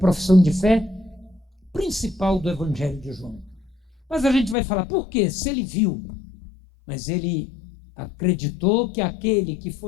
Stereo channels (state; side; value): drops out; right; at 4.5 s